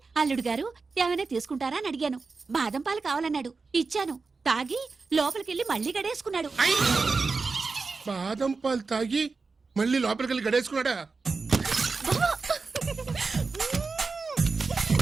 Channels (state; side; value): quieter; left; 4.3 dB